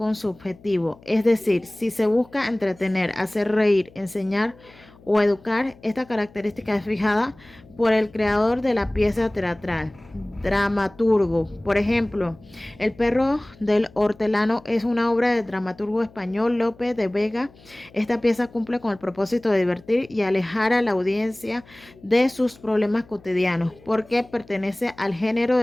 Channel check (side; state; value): left; noise; hum, 25 dB below the sound